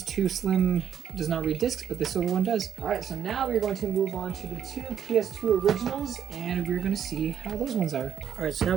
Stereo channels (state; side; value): quieter; left; 8.8 dB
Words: Slim does not read discs, but the silver one does. All right, so now we're going to move on to the two PS2 originals, and we're going to see how those ones are. All right, so